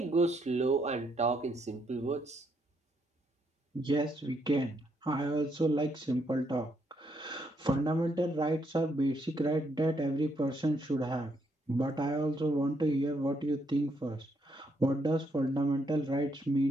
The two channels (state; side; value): normal; both; correlation 0.75